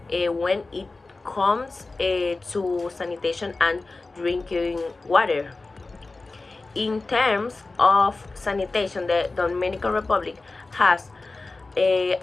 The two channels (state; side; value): quieter; right; 3.5 dB